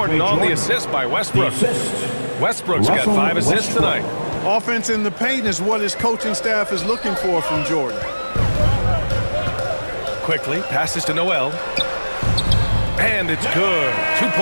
on the assist by Westbrook. Westbrook's got 5 assists tonight. Offense in the paint is what his coaching staff is looking for from Jordan. Quickly passes to Noel. And it's good. 2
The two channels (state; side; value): inverted; both; correlation -1.00